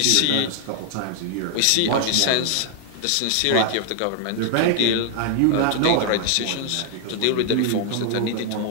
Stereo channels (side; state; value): both; different; correlation 0.00